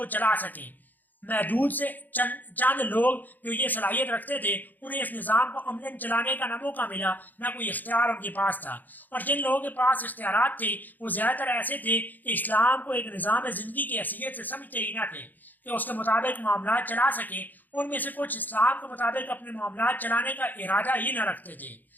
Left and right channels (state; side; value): late; right; 0.085 ms